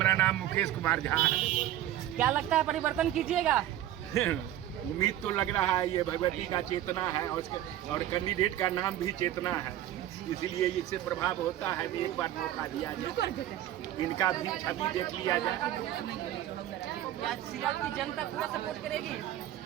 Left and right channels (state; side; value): quieter; left; 12.8 dB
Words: नाम मुकेश कुमार झा है। क्या लगता है परिवर्तन कीजिएगा? उम्मीद तो लग रहा है ये भगवती का चेतना है और कैंडिडेट का नाम भी चेतना है, इसलिए इससे प्रभाव होता है कि एक बार मौका दिया जाए, इनका भी छवि देख लिया जाए। क्या सियाल की जनता पूरा सपोर्ट करेगी?